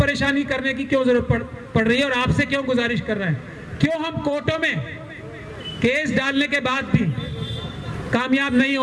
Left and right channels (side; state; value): both; identical; correlation 1.00